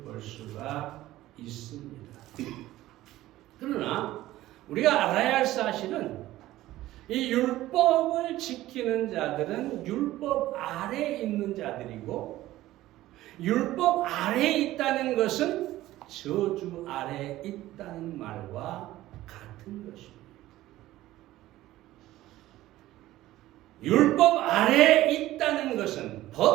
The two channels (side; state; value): left; quieter; 15.7 dB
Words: 수가 있습니다. 그러나 우리가 알아야 할 사실은 이 율법을 지키는 자들은 율법 아래에 있는 자들이고, 율법 아래에 있다는 것은 저주 아래에 있다는 말과 같은 것입니다. 율법 아래에 있다는 것은,